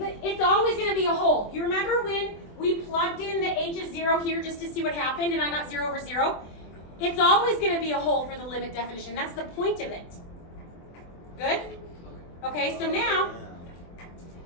always going to be a hole. You remember when we plugged in the h is 0 here just to see what happened and I got 0 over 0? It's always going to be a hole for the limit definition. That's the point of it. Good? Okay, so now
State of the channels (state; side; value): late; right; 24 ms